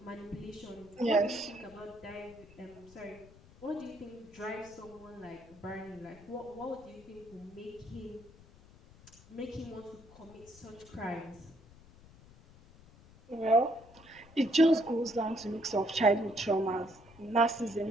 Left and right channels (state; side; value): noise; left; rumble, 23 dB below the sound